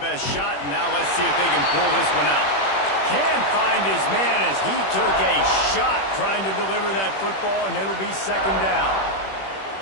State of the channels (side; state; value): right; late; 21 ms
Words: best shot. And now let's see if they can pull this one out. Can't find his man as he took a shot trying to deliver that football, and it'll be 2nd down.